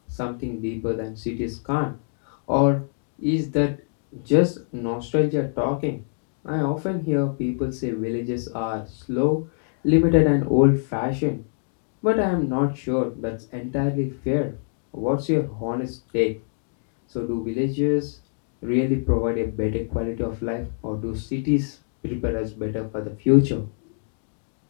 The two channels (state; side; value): silent; right; digital silence